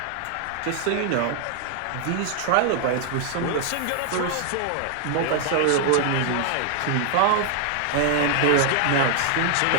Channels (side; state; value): both; different; correlation 0.00